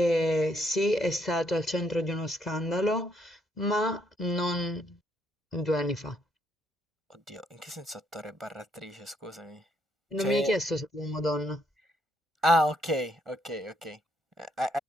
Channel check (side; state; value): both; normal; correlation 0.72